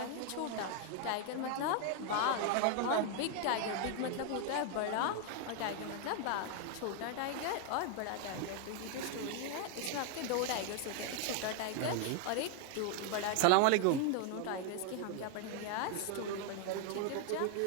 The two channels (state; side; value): different; both; correlation 0.00